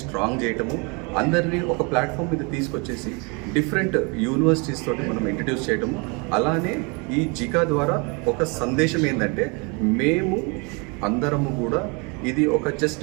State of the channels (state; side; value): quieter; left; 31.3 dB